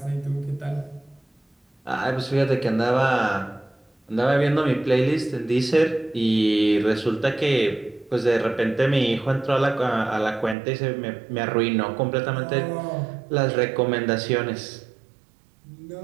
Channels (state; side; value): drops out; left; at 10.6 s